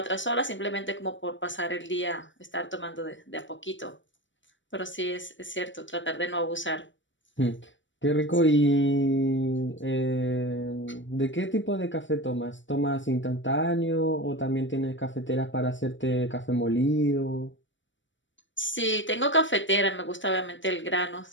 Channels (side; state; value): right; late; 0.55 ms